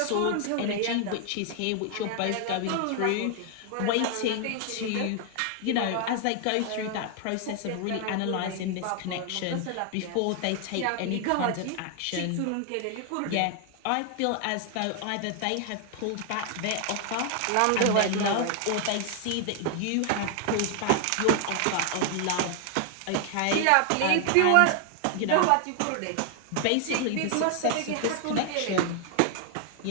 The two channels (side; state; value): both; different; correlation 0.00